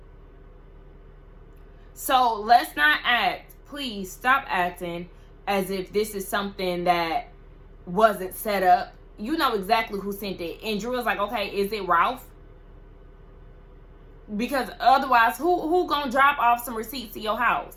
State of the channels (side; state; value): both; identical; correlation 1.00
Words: So let's not act, please stop acting as if this is something that wasn't set up. You know exactly who sent it. And Drew was like, okay, is it Ralph? Because otherwise, who gonna drop off some receipts to your house?